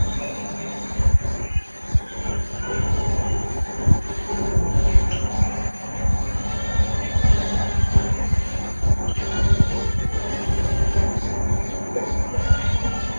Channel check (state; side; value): inverted; both; correlation -1.00